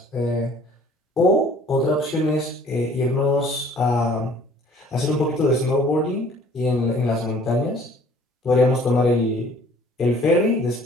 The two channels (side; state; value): both; normal; correlation 0.54